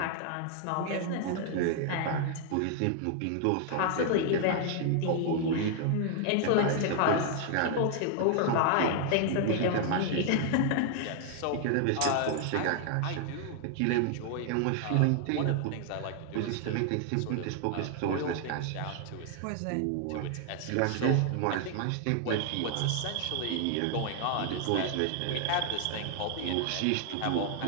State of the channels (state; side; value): different; both; correlation 0.00